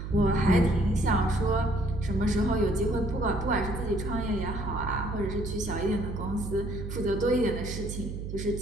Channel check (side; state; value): right; noise; hum, 7 dB below the sound